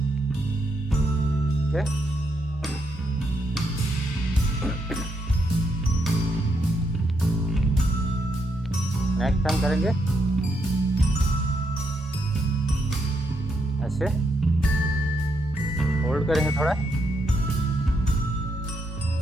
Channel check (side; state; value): both; normal; correlation 0.79